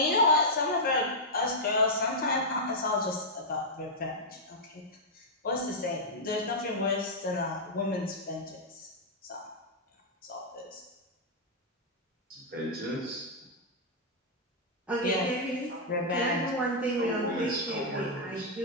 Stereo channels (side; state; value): both; normal; correlation -0.06